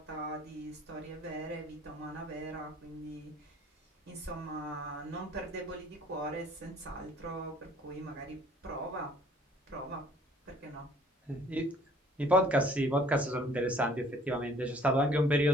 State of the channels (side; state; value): both; normal; correlation 0.56